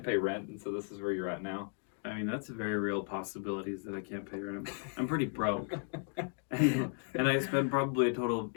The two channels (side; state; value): right; silent; 54 dB below the other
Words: pay rent, and so this is where you're at now. I mean, that's a very real possibilities that I can't pay rent. I'm pretty broke. and I spend probably a total of